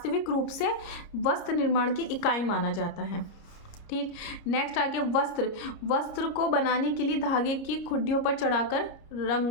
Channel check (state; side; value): late; right; 30 ms